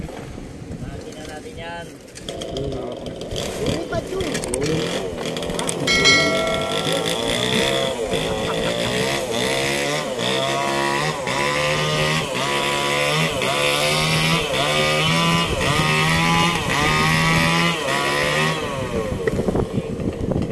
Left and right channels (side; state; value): both; identical; correlation 1.00